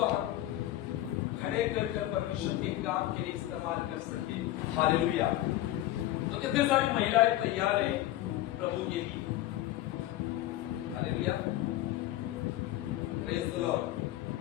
हम खड़े कर परमेश्वर के काम के लिए इस्तेमाल कर सके। हालेलुया। तो कितने सारी महिलाएं तैयार है प्रभु के लिए। Hallelujah, praise the Lord.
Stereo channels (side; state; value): right; quieter; 14.8 dB